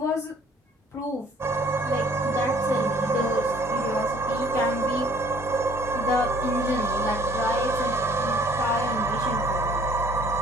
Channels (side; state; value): both; normal; correlation 0.57